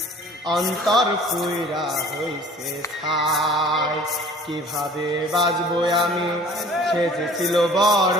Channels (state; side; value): normal; both; correlation 0.48